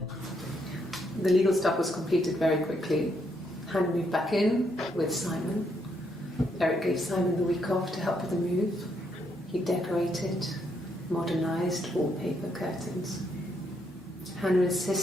The legal stuff was completed very quickly. Hannah moved back in with Simon. Eric gave Simon the week off to help with the move. He decorated, modernised wallpaper, curtains. Hannah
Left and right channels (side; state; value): both; normal; correlation 0.75